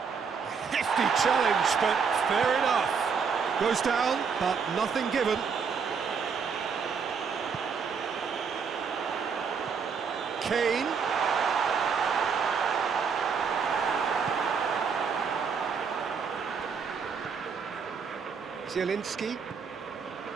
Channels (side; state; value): left; quieter; 6.0 dB